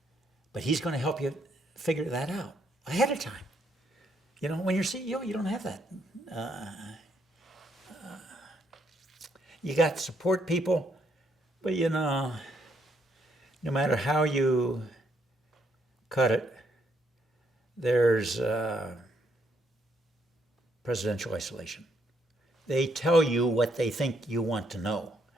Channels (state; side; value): normal; both; correlation 0.73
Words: But he's going to help you figure that out ahead of time. You know, when you're CEO, you don't have that. You got to support people, but you know, no matter how you cut it, there's presidential isolation. They tell you what they think you want to know,